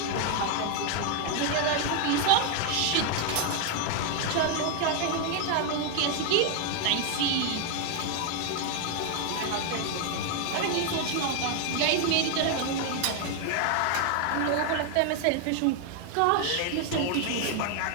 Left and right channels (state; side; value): different; both; correlation 0.01